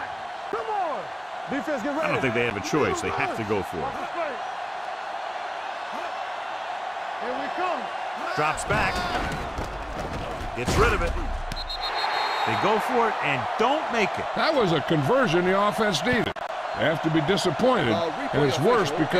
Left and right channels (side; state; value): both; identical; correlation 1.00